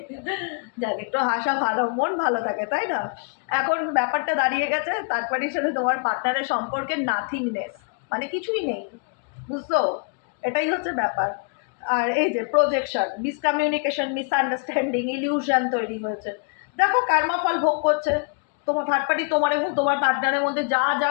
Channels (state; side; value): quieter; right; 38.6 dB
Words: যাক, একটু হাসা ভালো, মন ভালো থাকে, তাই না? এখন ব্যাপারটা দাঁড়িয়ে গেছে থার্ড পার্টির সাথে তোমার পার্টনারের সম্পর্কে নাথিংনেস, মানে কিছুই নেই, বুঝছো? এটাই হচ্ছে ব্যাপার। আর এই যে প্রজেকশন, মিসকমিউনিকেশন, মিসআন্ডারস্ট্যান্ডিং, ইলিউশন তৈরি হয়েছে। দেখো কর্মফল ভোগ করছে তোমার থার্ড পার্টি, তোমার এবং তোমার পার্টনারের মধ্যে যা যা